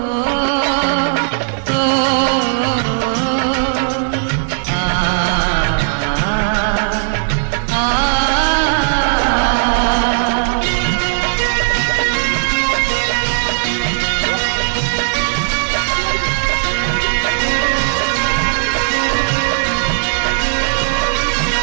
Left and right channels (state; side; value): silent; left; digital silence